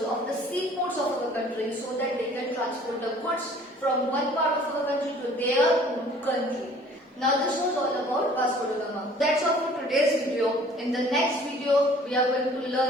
of the seaports of our country so that they can transport the goods from one part of our country to their own country. Now this was all about Vasco da Gama. That's all for today's video. In the next video, we are going to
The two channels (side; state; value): both; normal; correlation 0.52